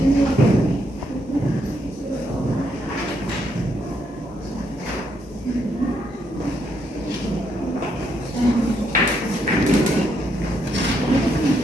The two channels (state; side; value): normal; both; correlation 0.76